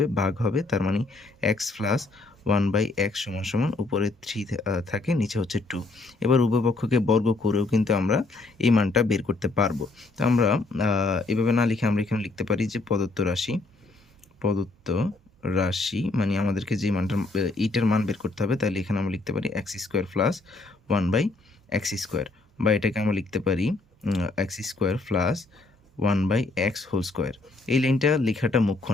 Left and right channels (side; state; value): right; quieter; 3.3 dB